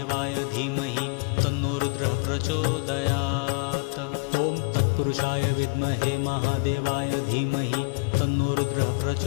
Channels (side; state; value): right; quieter; 34.0 dB